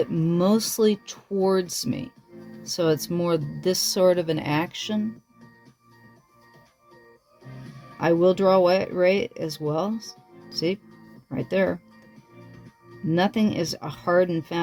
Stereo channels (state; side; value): identical; both; correlation 1.00